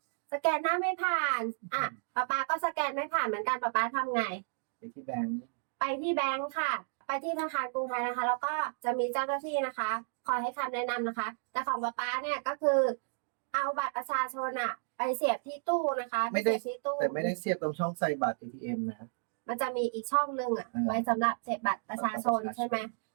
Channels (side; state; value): left; silent; digital silence